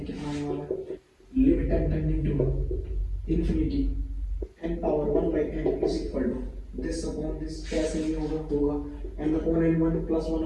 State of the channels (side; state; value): both; identical; correlation 1.00